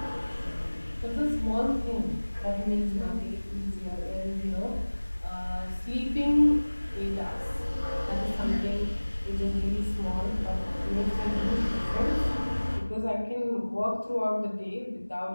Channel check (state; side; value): inverted; both; correlation -1.00